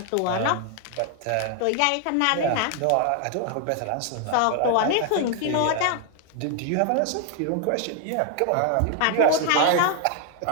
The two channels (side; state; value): both; different; correlation 0.00